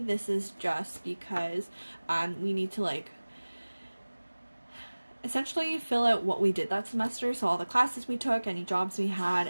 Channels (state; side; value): inverted; both; correlation -1.00